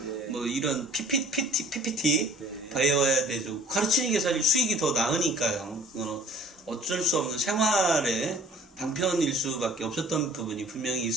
예. 뭐 이런 PPT 네. 배워야 되죠. 가르치는 게 사실 수익이 더 나으니까요. 어쩔 수 없는 생활의 방편일 수밖에 없었던 부분이 분명히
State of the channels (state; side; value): normal; both; correlation 0.50